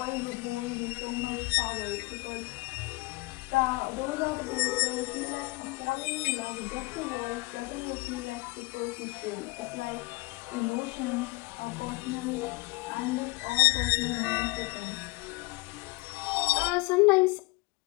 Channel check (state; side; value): quieter; right; 24.5 dB